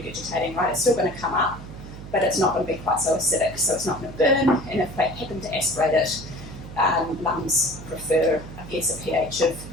right? It's still going to come up, but it's not going to be quite so acidic, so it's not going to burn. And if they happen to aspirate it, lungs prefer, I guess, a pH of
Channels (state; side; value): noise; right; hum, 13 dB below the sound